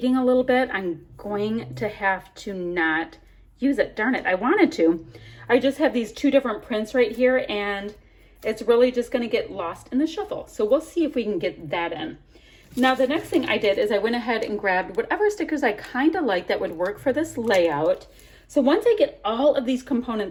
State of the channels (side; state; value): both; identical; correlation 1.00